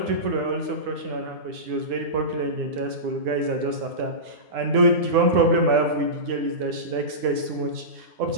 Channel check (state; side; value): late; left; 9.6 ms